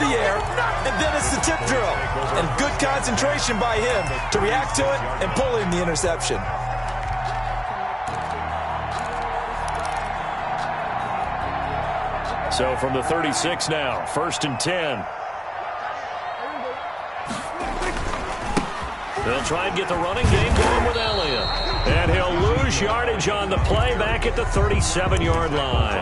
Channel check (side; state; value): both; identical; correlation 1.00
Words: the air, and then it's the tip drill. And good concentration by him to react to it and pull in the interception. So from the 36 now, 1st and 10. They'll try and get the running game going with Elliott. And he'll lose yardage on the play back at the 37-yard